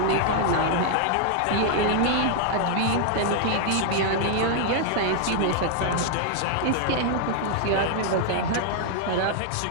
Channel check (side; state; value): both; different; correlation 0.00